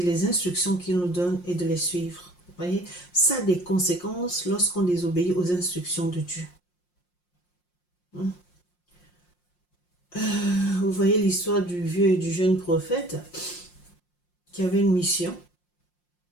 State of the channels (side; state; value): right; late; 5.6 ms